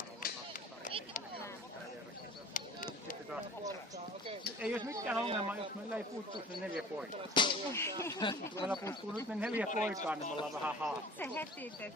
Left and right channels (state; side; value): normal; both; correlation 0.43